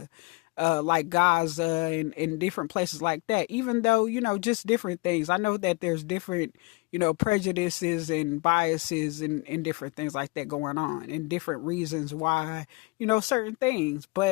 like Gaza and different places like that. Even though just different things. I know that there's different prejudices and biases and different things like that going on, and different reasons why certain things.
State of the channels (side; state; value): right; quieter; 26.4 dB